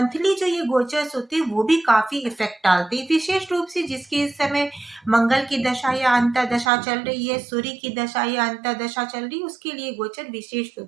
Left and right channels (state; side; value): drops out; left; at 6.7 s